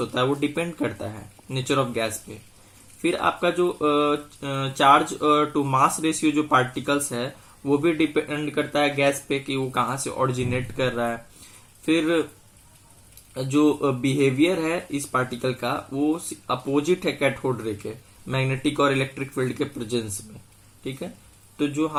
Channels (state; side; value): identical; both; correlation 1.00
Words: है वो डिपेंड करता है नेचर ऑफ गैस पे। फिर आपका जो चार्ज टू मास रेशियो जो पार्टिकल्स है वो भी डिपेंड करता है गैस पे कि वो कहाँ से ओरिजिनेट कर रहा है। फिर जो बिहेवियर है इस पार्टिकल का वो अपोजिट है कैथोड रे के, मैग्नेटिक और इलेक्ट्रिक फील्ड के प्रेजेंस में। ठीक है, तो जो